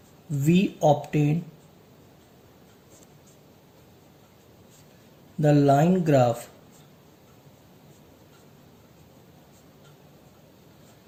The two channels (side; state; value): both; identical; correlation 1.00